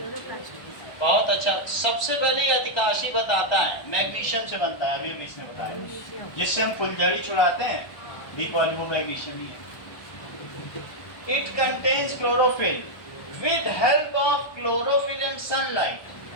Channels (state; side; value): late; right; 1.2 ms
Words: क्लोरोप्लास्ट। बहुत अच्छा। सबसे पहले ये अधिकाशी बताता है मैग्नीशियम से बनता है, अभी अभी इसने बताया, जिससे हम फुलझड़ी छुड़ाते हैं, बी पॉली वो मैग्नीशियम ही है। It contains chlorophyll. With help of chlorophyll and